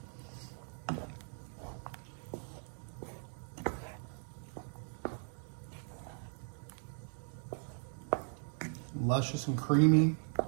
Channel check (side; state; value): left; silent; 52 dB below the other